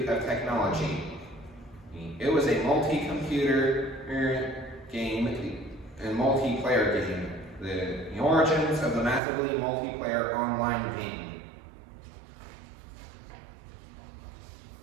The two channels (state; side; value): drops out; left; at 9.2 s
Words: of Technology. It was a multi-computer game and multiplayer game, the origins of the massively multiplayer online game.